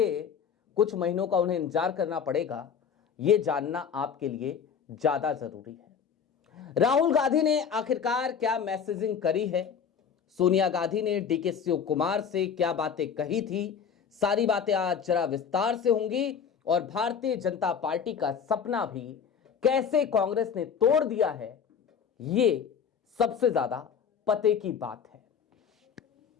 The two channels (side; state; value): right; quieter; 7.1 dB